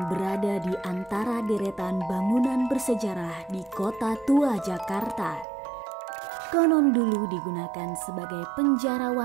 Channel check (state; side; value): drops out; left; at 5.5 s